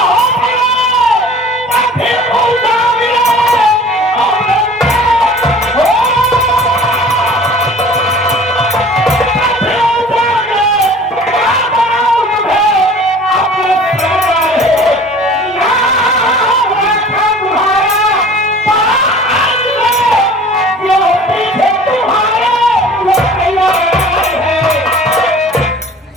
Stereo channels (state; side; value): normal; both; correlation 0.45